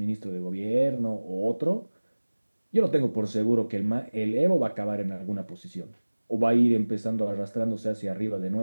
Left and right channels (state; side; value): inverted; both; correlation -1.00